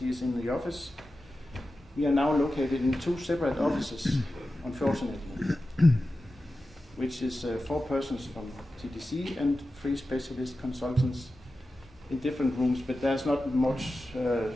in the office, we are now located in 2 separate offices, unfortunately, which is 4 persons from TDC and 3 specialist consultants in different rooms, but there's not much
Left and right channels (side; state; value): both; normal; correlation 0.93